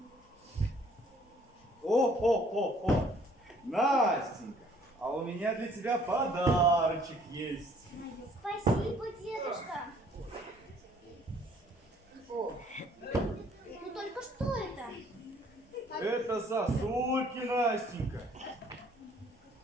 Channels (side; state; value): both; normal; correlation 0.60